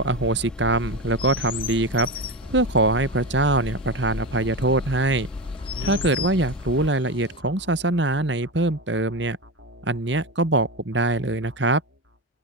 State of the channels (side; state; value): both; normal; correlation 0.19